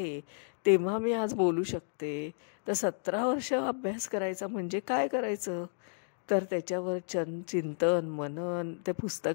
तेव्हा मी आज बोलू शकते, तर 17 वर्ष अभ्यास करायचा म्हणजे काय करायचं, तर त्याच्यावर चिंतन, मनन, त्या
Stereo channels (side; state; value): right; silent; digital silence